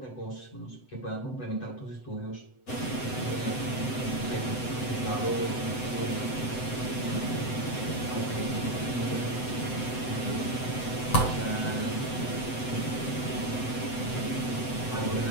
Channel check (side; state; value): right; late; 7.9 ms